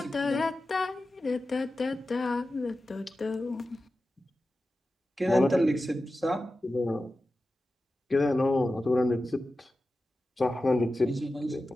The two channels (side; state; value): both; normal; correlation 0.93